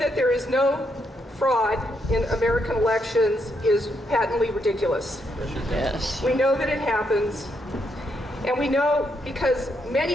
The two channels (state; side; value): normal; both; correlation 0.78